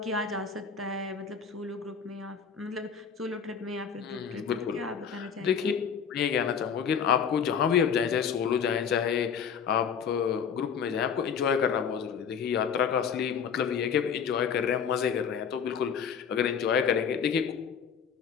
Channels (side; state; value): right; quieter; 7.1 dB